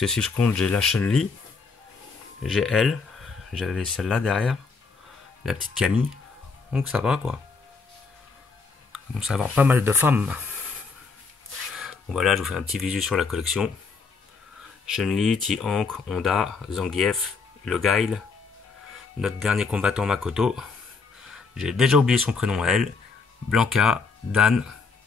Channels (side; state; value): right; quieter; 4.7 dB